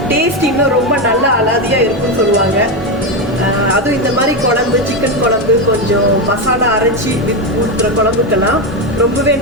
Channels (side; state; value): both; normal; correlation 0.11